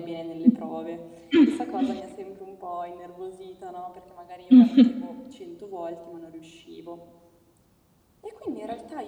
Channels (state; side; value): identical; both; correlation 1.00